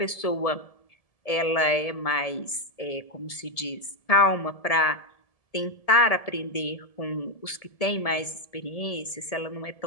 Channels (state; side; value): late; right; 1.7 ms